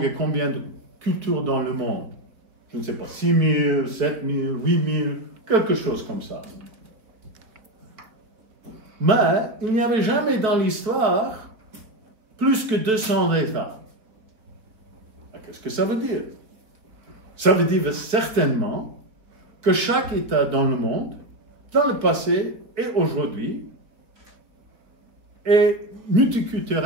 et combien de cultures dans le monde? Je ne sais pas, 6 000, 7 000, 8 000, quelque chose comme ça. Mais il n'y avait jamais dans l'histoire plus que 200 États. Qu'est-ce que ça veut dire? Ça veut dire certainement que chaque État dans le monde, dans le passé et aujourd'hui, est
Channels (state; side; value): late; left; 4.1 ms